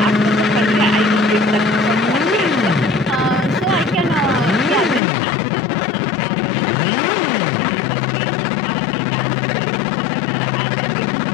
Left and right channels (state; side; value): drops out; right; at 5.0 s